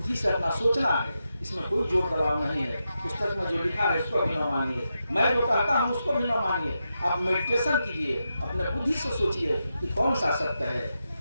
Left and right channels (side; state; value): both; inverted; correlation -0.87